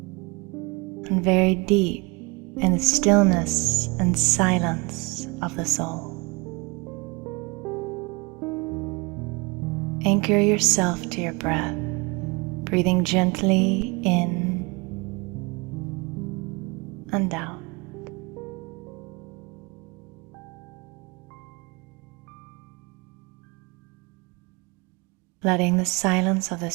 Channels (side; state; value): left; quieter; 28.3 dB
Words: and very deep in the stillness and silence of the soul. Anchor yourself to your breath, breathing gently in and out. Letting the silence of